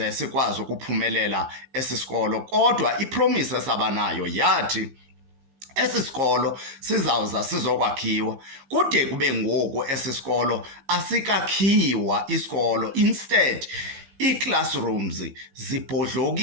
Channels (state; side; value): late; left; 15 ms